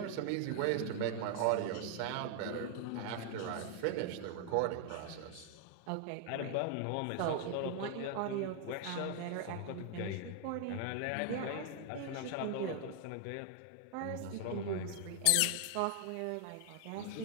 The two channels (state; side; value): different; both; correlation 0.00